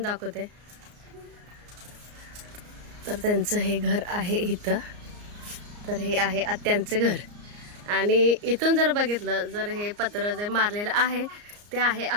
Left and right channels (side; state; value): left; late; 34 ms